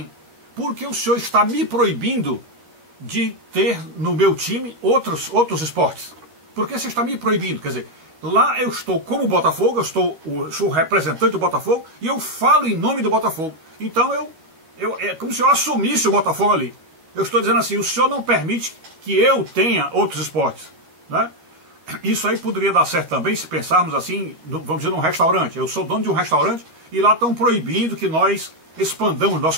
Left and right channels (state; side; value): late; left; 12 ms